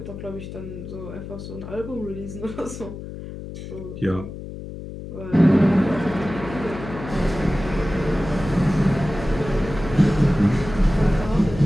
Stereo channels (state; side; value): noise; left; hum, 10 dB below the sound